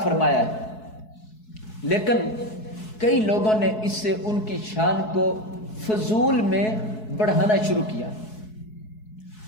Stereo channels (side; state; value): right; late; 4.7 ms